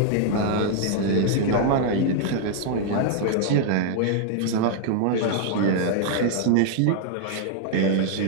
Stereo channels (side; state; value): both; different; correlation -0.01